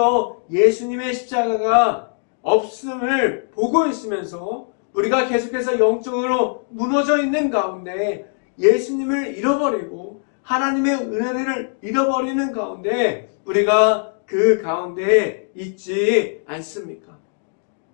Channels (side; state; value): right; silent; 63 dB below the other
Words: 예수님의 십자가가 없음을 보고 있으면서 우리가 계속해서 영적으로 무너져 있는 가운데 예수님을 잃어버리고 하나님의 은혜를 잃어버리는 가운데 우리가 그 가운데 있지 않습니까?